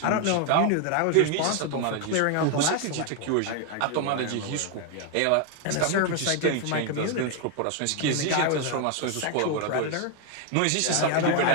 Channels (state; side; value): different; both; correlation 0.01